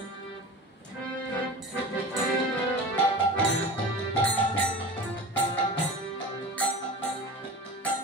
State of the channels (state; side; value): normal; both; correlation 0.33